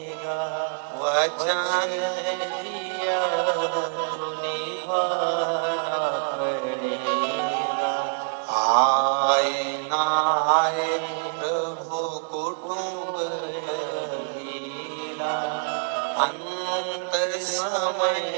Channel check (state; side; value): silent; left; digital silence